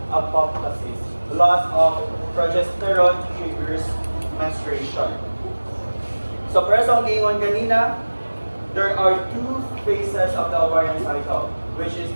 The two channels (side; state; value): both; inverted; correlation -1.00